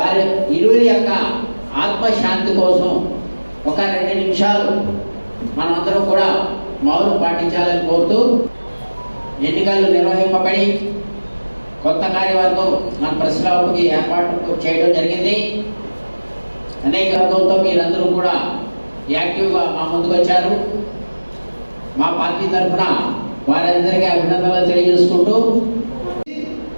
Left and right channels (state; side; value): inverted; both; correlation -1.00